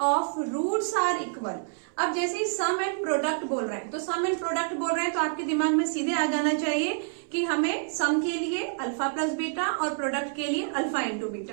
roots are equal. अब जैसे ही सम and product बोल रहे हैं, तो सम and product बोल रहे हैं तो आपके दिमाग में सीधे आ जाना चाहिए कि हमें सम के लिए अल्फा प्लस बीटा और प्रोडक्ट के लिए अल्फा इंटू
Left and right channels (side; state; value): left; silent; 60 dB below the other